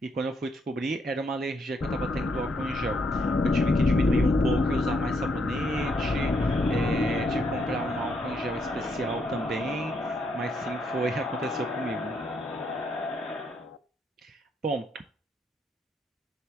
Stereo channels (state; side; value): normal; both; correlation 0.75